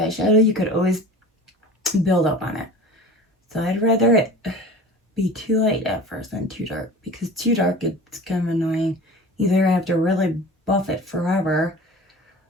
you could always build up on it. So I'd rather it be too light at first than too dark, because too dark, it's kind of annoying. Either I have to really buff it forever,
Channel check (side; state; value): both; normal; correlation 0.38